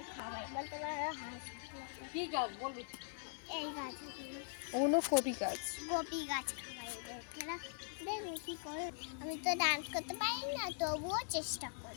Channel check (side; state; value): right; silent; digital silence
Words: খাওয়াই, বলতে পারো হাঁস। কি গাছ বলবি? এই গাছগুলো ওগুলো কপি গাছ। কপি গাছ খাওয়াই এদেরকে। দেখো কি করে, আমি তো ডান্স করতে পারি না, তবুও চেষ্টা